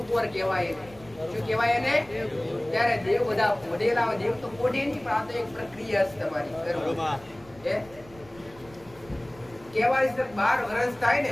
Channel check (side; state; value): right; noise; rumble, 23 dB below the sound